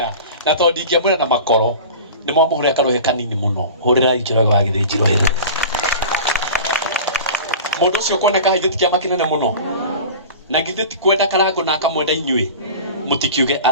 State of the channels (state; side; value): inverted; both; correlation -0.36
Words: na tondũ ndingĩamwĩra na makoro nĩ mwamũhũrĩra karuhĩ kanini mũno hũrĩra Njoroge wa Githinji rũhĩ mũndũ ũcio kuoneka haithĩ ti kĩama kĩnene mũno na githĩ ti kwenda karango na akamwenda inyuĩ mũtikiuge